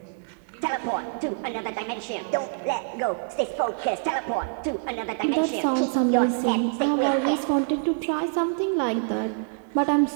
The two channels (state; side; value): silent; left; digital silence